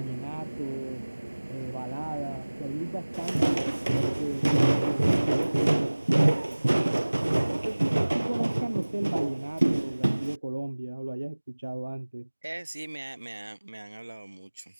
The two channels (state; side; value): inverted; both; correlation -1.00